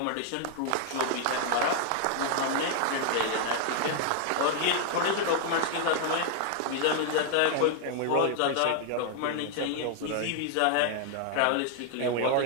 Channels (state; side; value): different; both; correlation 0.00